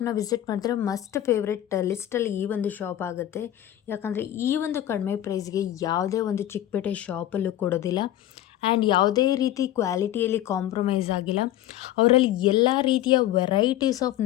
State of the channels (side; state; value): right; quieter; 12.8 dB